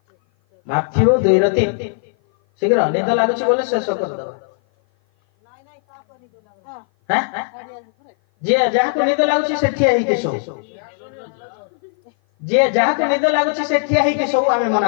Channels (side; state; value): right; silent; 56 dB below the other